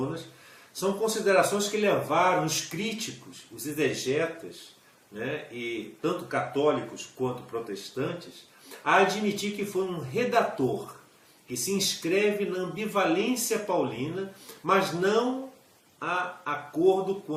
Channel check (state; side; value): identical; both; correlation 1.00